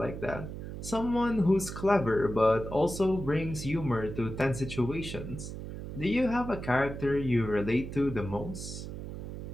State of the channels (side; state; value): right; noise; hum, 8 dB below the sound